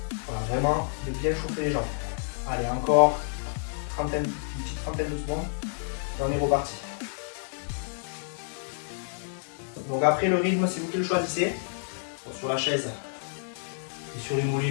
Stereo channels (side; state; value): right; silent; digital silence